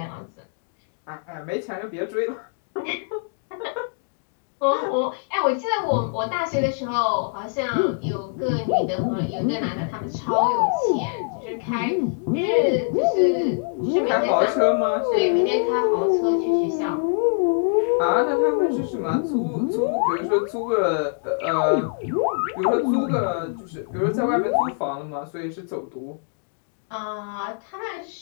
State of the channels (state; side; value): silent; right; digital silence